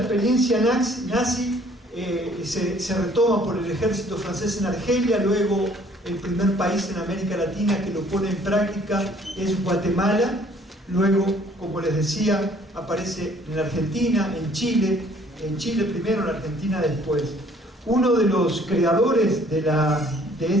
nazi, se retoma por el ejército francés en Argelia. Luego el primer país en América Latina que lo pone en práctica es Guatemala. Luego, como les decía, aparece en la Argentina, en Chile primero, en la Argentina después. Uno de los creadores de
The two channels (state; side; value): normal; both; correlation 0.59